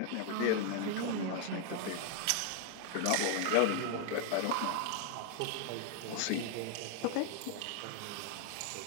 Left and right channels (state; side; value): different; both; correlation 0.00